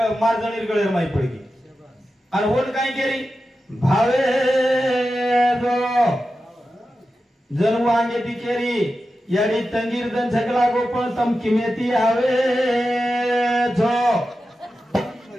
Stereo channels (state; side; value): normal; both; correlation 0.92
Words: मार जणीर गळेर माई पडगी आणि होन काय केली भावे जो जनू आंगे ती केरी याडी तंगीर दन छगला गोपळ तम किमेती आवे जो